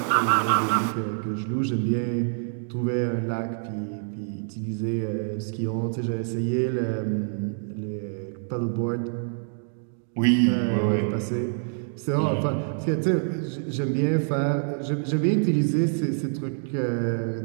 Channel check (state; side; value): silent; left; digital silence